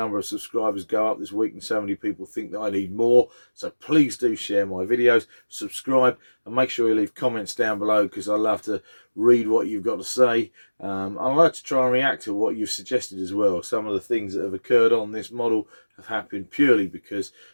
of subscribers go up this week, and so many people think that I need more. So please do share my videos, subscribe, and make sure you leave comments down below, because I love to read what you've got to say. I like to try and react to what you've suggested as well. Some of the things that have occurred on this model have happened purely because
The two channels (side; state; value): both; inverted; correlation -1.00